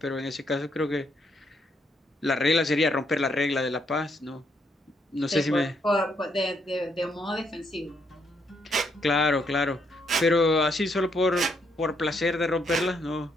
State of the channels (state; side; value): normal; both; correlation 0.74